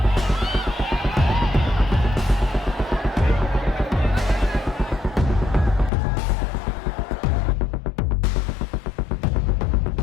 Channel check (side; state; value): right; drops out; at 5.9 s